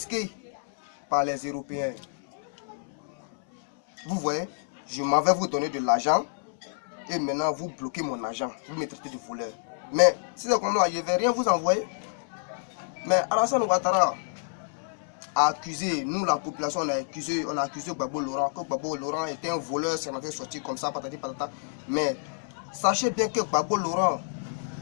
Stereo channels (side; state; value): right; silent; 59 dB below the other